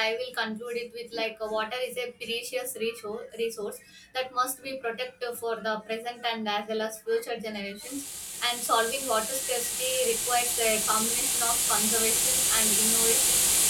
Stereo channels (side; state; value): both; identical; correlation 1.00